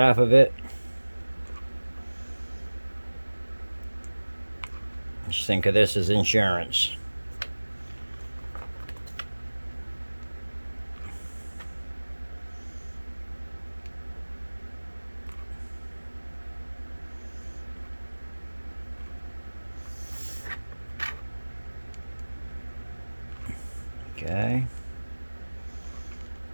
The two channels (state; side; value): inverted; both; correlation -1.00